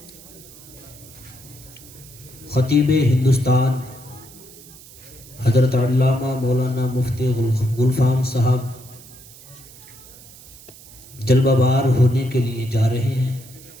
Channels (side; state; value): right; noise; hiss, 20 dB below the sound